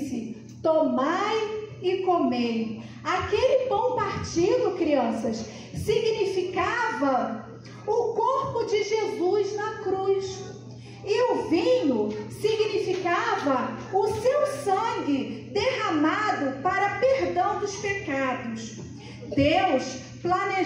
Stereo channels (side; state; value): both; identical; correlation 1.00